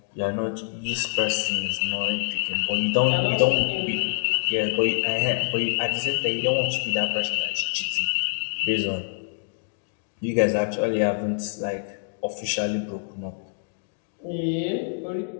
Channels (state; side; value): silent; right; 61 dB below the other